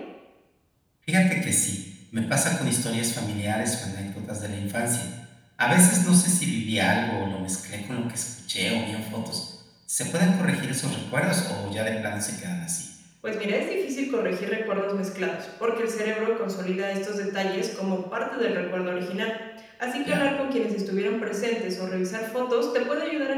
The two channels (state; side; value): identical; both; correlation 1.00